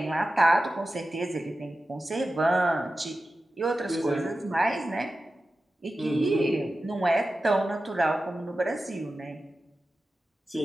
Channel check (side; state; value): both; normal; correlation 0.94